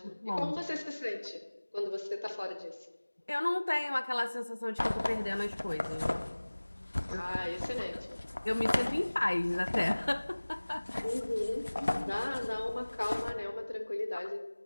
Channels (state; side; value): inverted; both; correlation -1.00